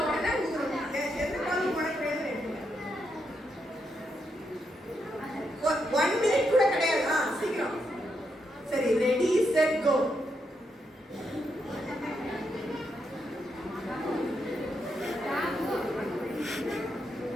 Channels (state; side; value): normal; both; correlation 0.81